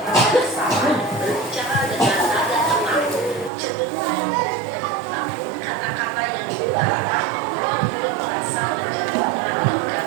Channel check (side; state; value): left; drops out; at 3.5 s